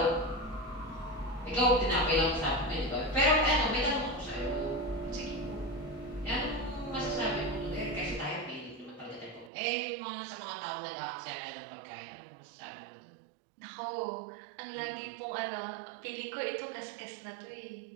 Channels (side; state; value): left; drops out; at 9.5 s